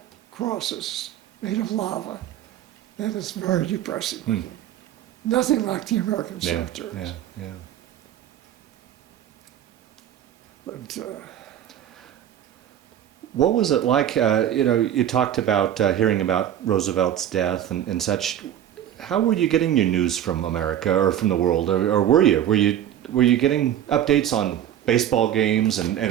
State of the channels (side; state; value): left; quieter; 10.9 dB